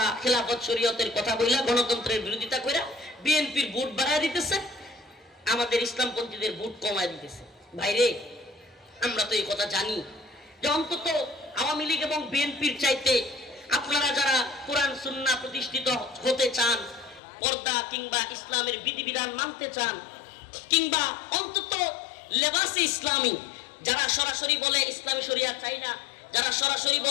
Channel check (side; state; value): right; drops out; at 17.2 s